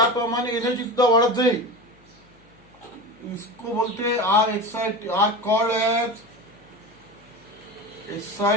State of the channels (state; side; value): noise; left; hum, 29 dB below the sound